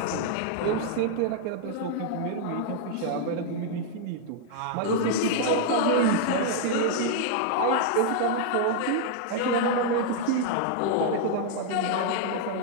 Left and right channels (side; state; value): both; different; correlation -0.01